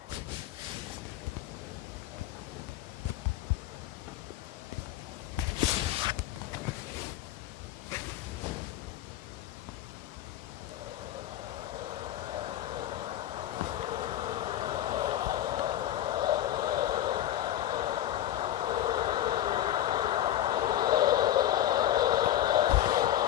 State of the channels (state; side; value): quieter; right; 12.5 dB